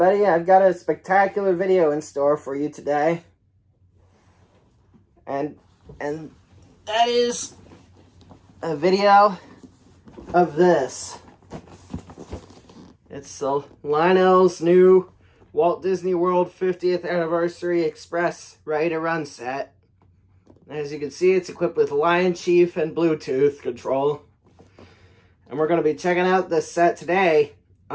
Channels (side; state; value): both; identical; correlation 1.00